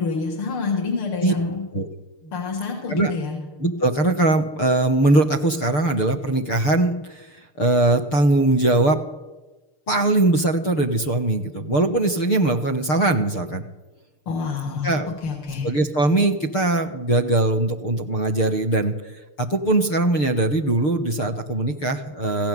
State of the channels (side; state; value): right; late; 6.7 ms